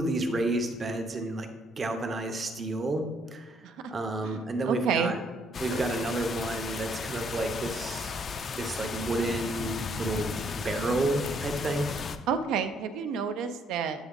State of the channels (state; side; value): normal; both; correlation 0.68